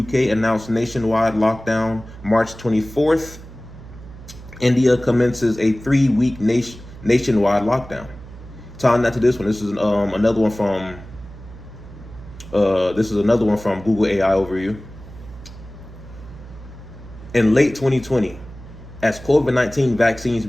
announced nationwide lockdown. March 24th, India commences a 3-week nationwide lockdown. Tying that to this one, this is another one from Google AI Overview. In late 2020, as COVID-19 vaccines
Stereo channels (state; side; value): noise; right; hum, 16 dB below the sound